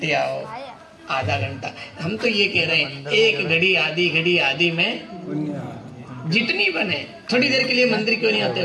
आओ, आधा घंटा। हम तो ये कह रहे हैं, एक घड़ी आधी घड़ी आधी में जितनी बने, थोड़ी देर के लिए मंदिर क्यों नहीं आते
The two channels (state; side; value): identical; both; correlation 1.00